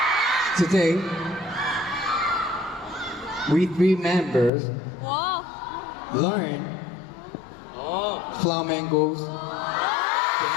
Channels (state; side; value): drops out; right; at 4.5 s